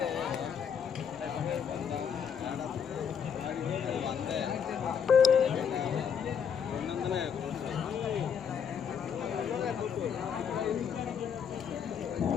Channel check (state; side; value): quieter; right; 7.4 dB